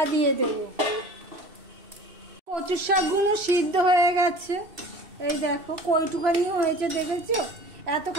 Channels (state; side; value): late; left; 2.7 ms